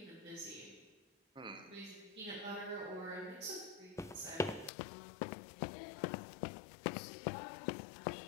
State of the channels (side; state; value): right; drops out; at 4.7 s